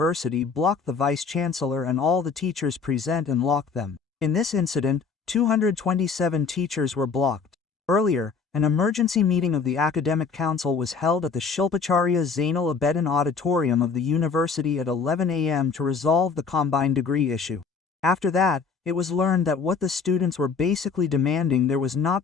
blocked the vice-chancellor and all the teachers present and locked them. In this incident, 227 teachers were blocked. Earlier, an emergency meeting of the Academic Council was held at the Shilpacharya Zainal Abedin Auditorium of the university at 11 a.m. to resolve the combined degree issue. After that, it was learned that what the students were basically demanding there was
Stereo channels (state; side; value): quieter; right; 5.3 dB